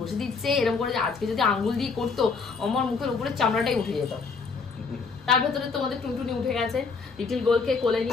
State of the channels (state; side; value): quieter; right; 4.7 dB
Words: দিচ্ছে, এরকম করে। আজকে যদি আঙ্গুল দিয়ে করতো আমার মুখের উপরে চামড়াটাই উঠে যেত। তার ভেতরে তোমাদের টুনটুনি উঠে গেছে, লিটিল গোলকে কোলে